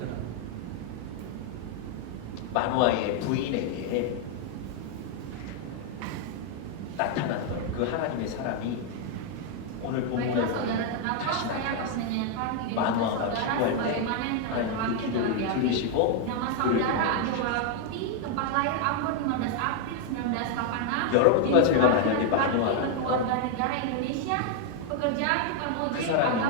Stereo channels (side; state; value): both; different; correlation 0.00